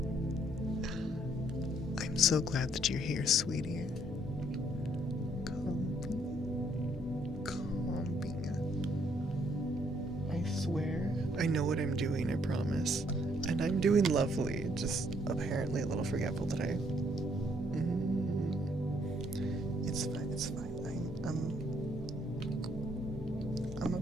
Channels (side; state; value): both; normal; correlation 0.68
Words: I'm so glad that you're here, sweetie. Copy. what I'm doing, I promise. And I'm doing lovely, just apparently a little forgetful today. It's fine, it's fine. I'm a